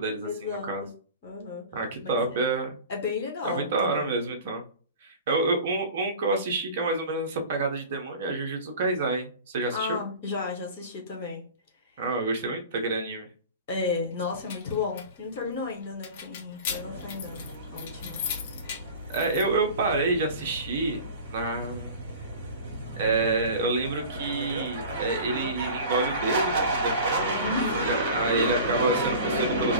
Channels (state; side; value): inverted; both; correlation -0.38